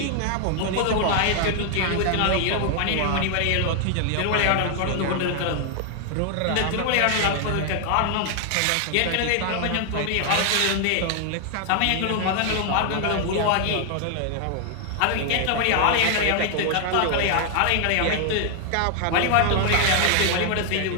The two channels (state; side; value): different; both; correlation 0.00